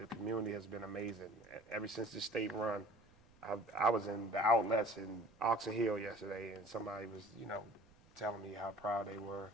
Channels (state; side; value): noise; right; rumble, 27 dB below the sound